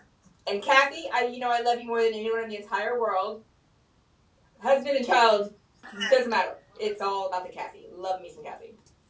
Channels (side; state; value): both; identical; correlation 1.00